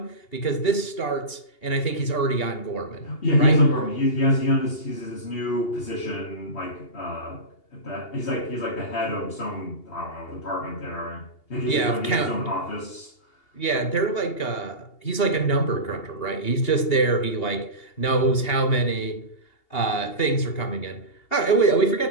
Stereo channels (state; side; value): late; right; 2.8 ms